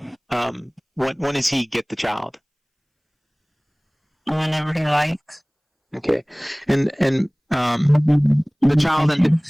When does he get the child? Whenever he likes. Okay. And the child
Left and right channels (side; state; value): both; identical; correlation 1.00